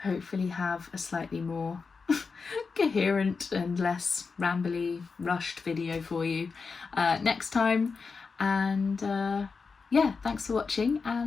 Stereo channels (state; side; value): quieter; right; 4.9 dB